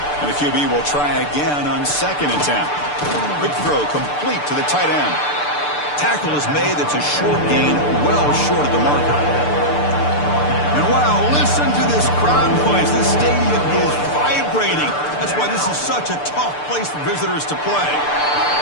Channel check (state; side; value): late; right; 6.8 ms